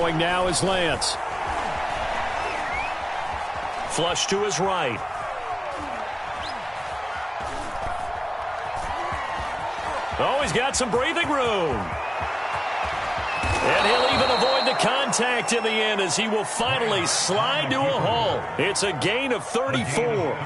now is Lance. Flush to his right. Oh, he's got some breathing room. And he'll even avoid the contact in the end as he will finally slide to a halt. It's a gain of 34.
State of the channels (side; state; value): both; identical; correlation 1.00